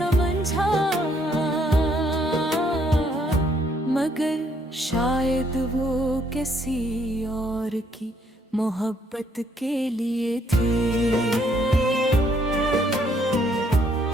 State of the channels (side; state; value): both; normal; correlation 0.68